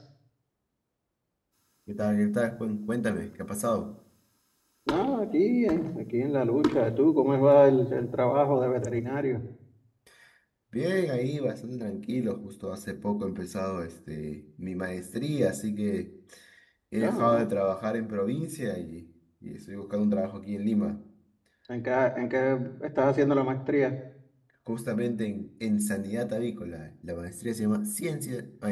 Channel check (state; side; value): identical; both; correlation 1.00